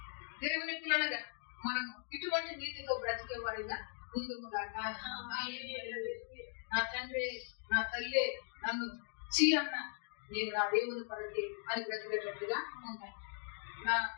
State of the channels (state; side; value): silent; right; 52 dB below the other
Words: దేవుని పిల్లలుగా మనము ఇటువంటి నీతితో బ్రతికే వారిగా ముందుగాక. నా తండ్రి, నా తల్లి నన్ను చీ అన్న నేను నా దేవుని కొరకే అని బ్రతికేటట్టుగా ఉంటాను.